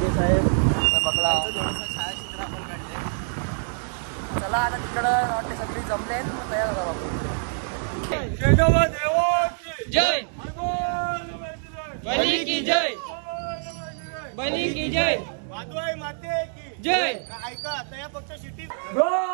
साहेब बघला. चला आता तिकडं वाटते सगळी जमले तयार झाला बाबू. जय बली की जय. बली की जय. वादवाई माते की जय. ऐका आता या पक्ष शिटी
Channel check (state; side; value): silent; left; digital silence